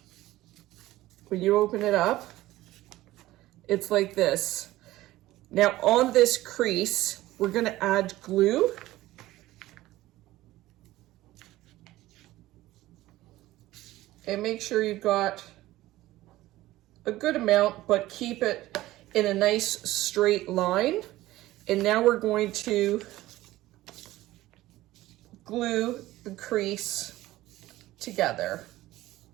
when you open it up, it's like this. Now on this crease, we're going to add glue. And make sure you've got a good amount, but keep it in a nice straight line. And now we're going to glue the crease together.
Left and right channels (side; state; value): left; quieter; 16.6 dB